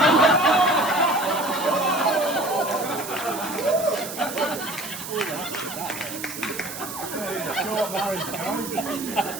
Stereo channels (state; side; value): noise; right; hiss, 9 dB below the sound